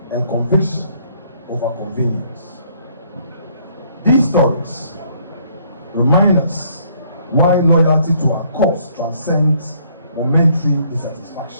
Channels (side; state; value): both; inverted; correlation -0.65